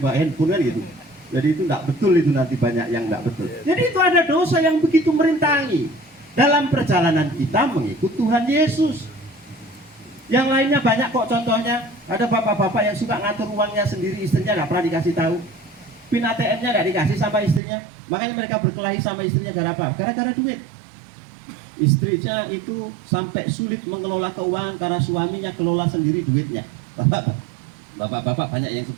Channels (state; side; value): drops out; left; at 17.6 s